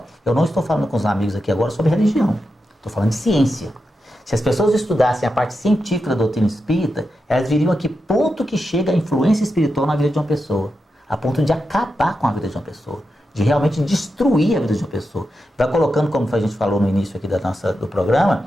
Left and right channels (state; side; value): normal; both; correlation 0.88